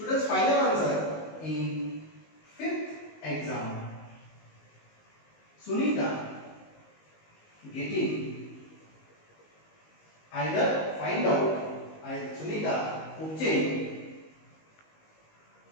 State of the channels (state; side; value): late; right; 19 ms